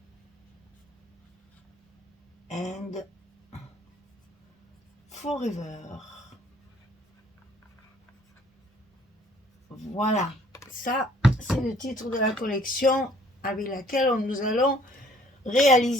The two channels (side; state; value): both; normal; correlation 0.59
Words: and Forever. Voilà, ça c'est le titre de la collection avec laquelle nous allons